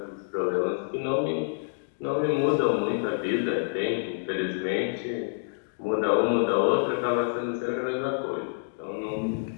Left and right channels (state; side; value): silent; right; digital silence